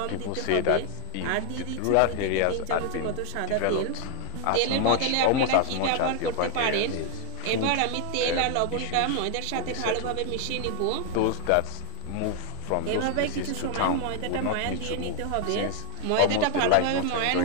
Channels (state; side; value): different; both; correlation 0.01